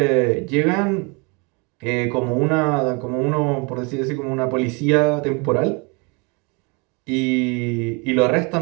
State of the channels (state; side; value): quieter; left; 30.6 dB